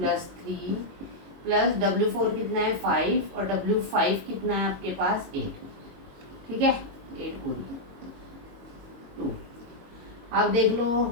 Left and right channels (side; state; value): left; late; 22 ms